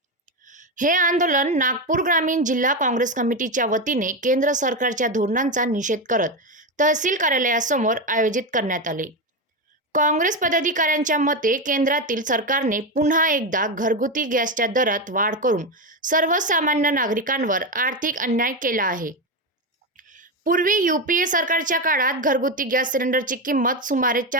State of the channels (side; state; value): both; normal; correlation 0.13